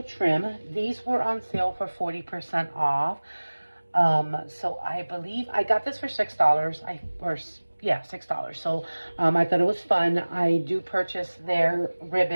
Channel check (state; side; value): inverted; both; correlation -1.00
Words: trim. These were on sale for 40% off. So I believe I got this for $6. $6. So, I thought it was fun. I do purchase their